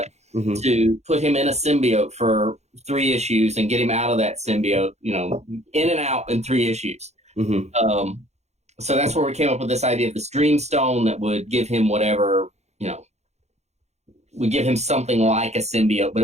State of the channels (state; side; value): late; left; 0.32 ms